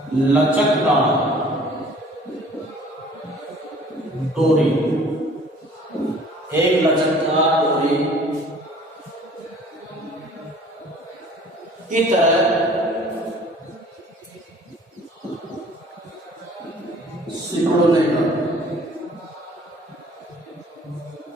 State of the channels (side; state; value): both; normal; correlation 0.52